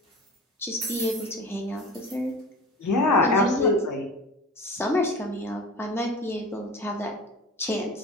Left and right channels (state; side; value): normal; both; correlation 0.35